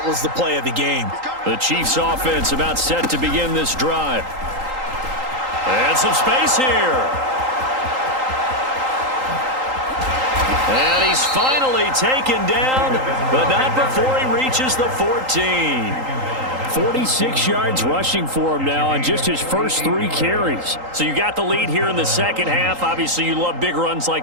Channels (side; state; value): left; late; 3.8 ms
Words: was the play of the game. The Chiefs offense about set to begin this drive. And some space here. And he's finally taken down, but not before he reaches the 14. 46 yards rushing for him now on just his first 3 carries. So you got the lead here in the second half. Obviously, you love big runs